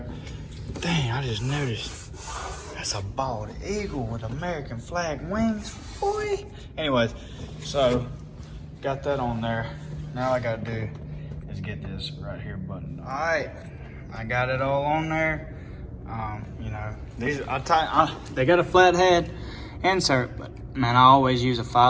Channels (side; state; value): both; identical; correlation 1.00